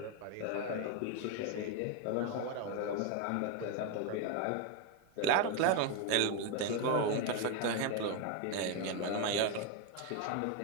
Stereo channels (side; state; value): both; different; correlation 0.01